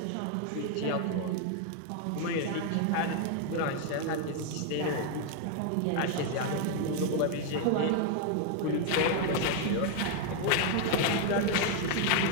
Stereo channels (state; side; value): different; both; correlation 0.01